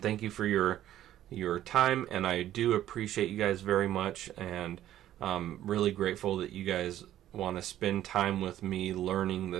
you for your time, and I do appreciate you guys very much, and I'm really grateful that you guys want to spend time with me learning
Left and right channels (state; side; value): quieter; left; 12.5 dB